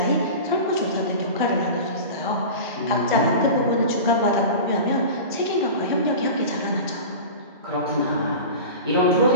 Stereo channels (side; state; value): both; inverted; correlation -0.31